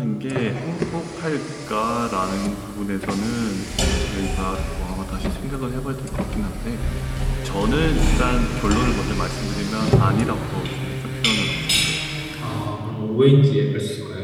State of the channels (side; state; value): both; identical; correlation 1.00